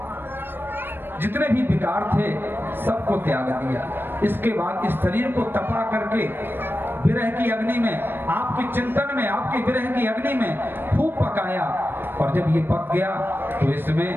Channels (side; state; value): left; late; 0.098 ms